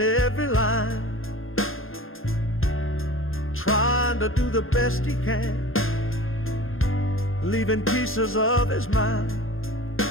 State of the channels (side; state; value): right; late; 0.60 ms